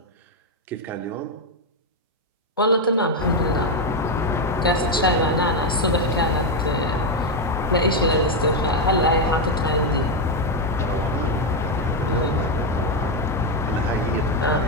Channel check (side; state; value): both; normal; correlation 0.05